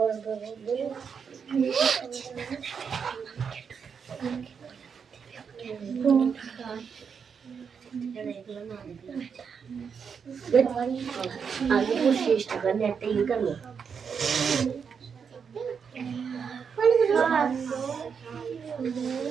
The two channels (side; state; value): left; quieter; 6.5 dB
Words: আগে 25 টাকা নিয়ে একটা ই করবো